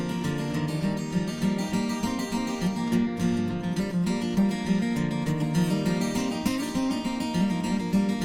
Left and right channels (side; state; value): both; identical; correlation 1.00